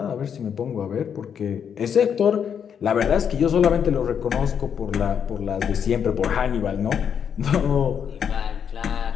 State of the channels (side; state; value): right; quieter; 7.8 dB